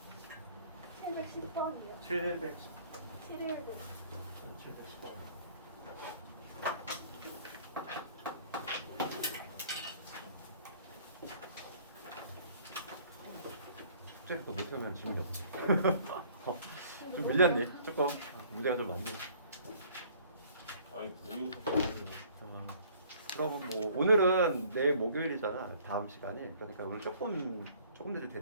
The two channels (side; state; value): both; inverted; correlation -0.55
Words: 710번이요. 710. 719. 숙제부터 못하면 질문이 없어. 좀 밀렸네. 조금 문제가 좀 많네. 아니 우유 그러면 뭐 오늘은 내일 목요일이잖아. 다음 시간이. 그러니까 오늘 조금 늦을